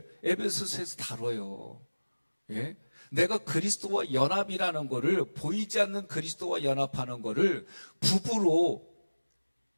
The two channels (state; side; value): inverted; both; correlation -1.00